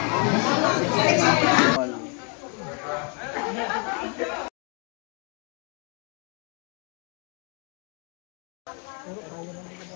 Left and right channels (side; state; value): right; quieter; 36.2 dB